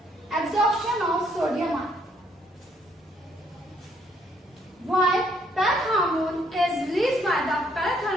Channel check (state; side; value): normal; both; correlation 0.68